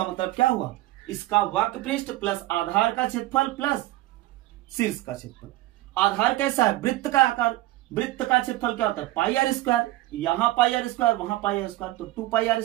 मतलब क्या हुआ, इसका वक्र पृष्ठ प्लस आधार का क्षेत्रफल प्लस शीर्ष का क्षेत्रफल। आधार कैसा है, वृत्त का आकार, वृत्त का क्षेत्रफल क्या होता है पाई आर स्क्वायर, यहां पाई आर स्क्वायर वहां पाई आर स्क्वायर, तो 2 पाई आर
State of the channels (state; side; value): quieter; left; 17.3 dB